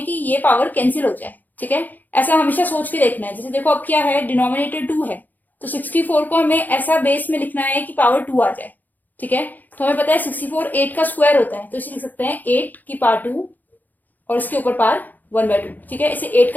कि ये पावर कैंसिल हो जाए। ठीक है, ऐसा हमेशा सोच के देखना है। जैसे देखो अब क्या है, डिनोमिनेटर 2 है तो 64 को हमें ऐसा बेस में लिखना है कि पावर 2 आ जाए। ठीक है, तो हमें पता है 64 8 का स्क्वायर होता है, तो इसे लिख सकते हैं 8 की पावर 2 और इसके ऊपर पावर 1/2। ठीक है, इसे 8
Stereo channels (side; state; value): right; late; 0.084 ms